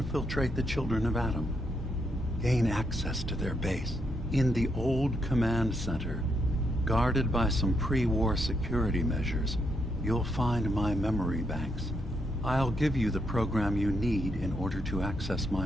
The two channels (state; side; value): normal; both; correlation 0.79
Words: the children of Adam. Gain access to their base. In the old command center, guarded by some pre-war security measures, you'll find my memory banks. I'll give you the program you need in order to access